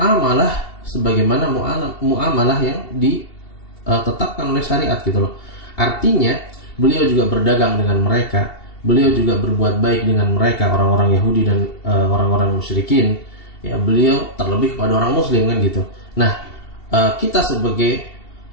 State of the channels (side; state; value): right; late; 2.7 ms